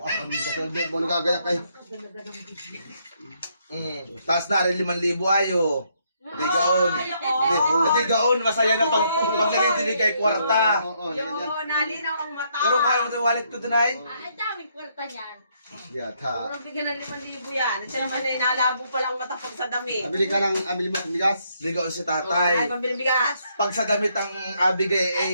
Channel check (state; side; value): inverted; both; correlation -0.73